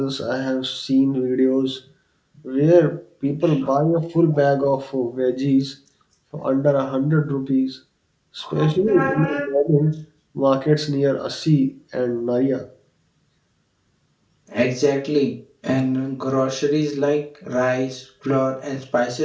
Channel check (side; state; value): both; identical; correlation 1.00